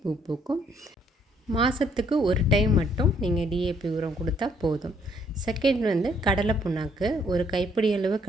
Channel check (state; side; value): normal; both; correlation 0.67